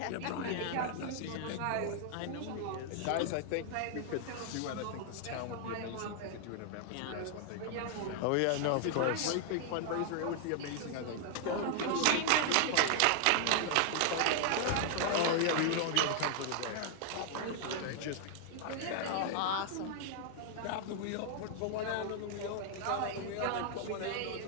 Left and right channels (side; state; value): both; different; correlation 0.00